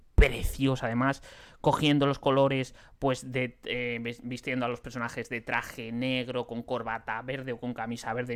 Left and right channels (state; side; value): identical; both; correlation 1.00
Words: precioso, además cogiendo los colores, pues vistiendo a los personajes de traje negro con corbata verde o con camisa verde